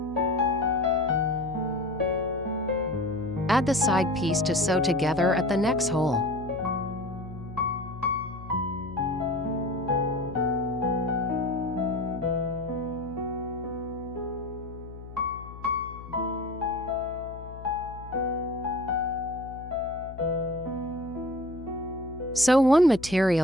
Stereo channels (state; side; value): noise; left; hum, 14 dB below the sound